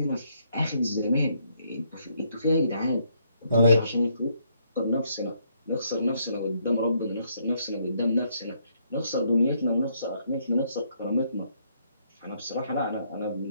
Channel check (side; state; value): both; inverted; correlation -0.72